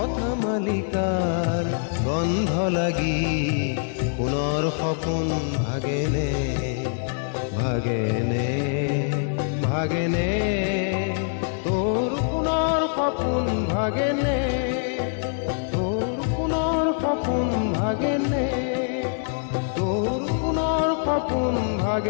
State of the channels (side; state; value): right; silent; digital silence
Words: মালিকাৰ গন্ধ লাগি পুনৰ সপোন ভাগেনে, ভাগেনে, ভাগেনে। তোৰ পুনৰ সপোন ভাগেনে, তোৰ পুনৰ সপোন ভাগেনে, তোৰ পুনৰ সপোন